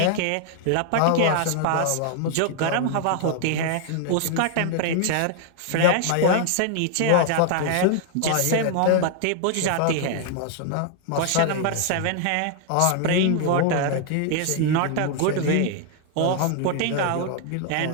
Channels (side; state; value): both; different; correlation 0.00